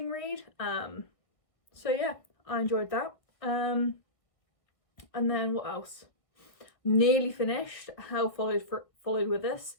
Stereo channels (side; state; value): right; late; 1.6 ms